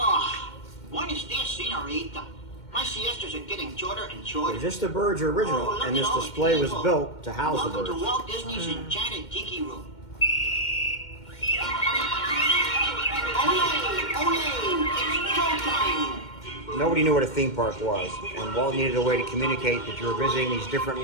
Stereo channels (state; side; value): late; right; 2.1 ms